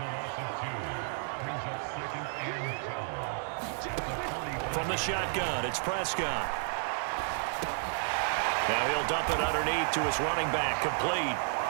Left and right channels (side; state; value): left; silent; 57 dB below the other